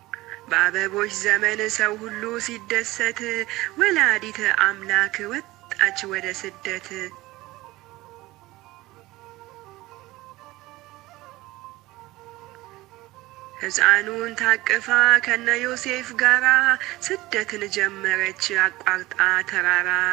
በአበቦች ዘመን ሰው ሁሉ ሲደሰት ወላዲተ አምላክ ወጣች ወደ ስደት። ሕፃኑን ታቅፋ ከነ ዮሴፍ ጋራ ስደትን ጀመረች አቋርጣ ተራራ።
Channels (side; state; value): left; quieter; 18.9 dB